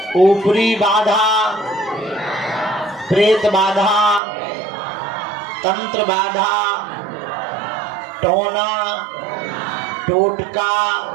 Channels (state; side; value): drops out; left; at 4.2 s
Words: ऊपरी बाधा, प्रेत बाधा, तंत्र बाधा, टोना टोटका